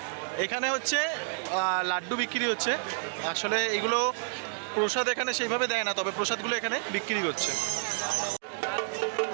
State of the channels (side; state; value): left; silent; digital silence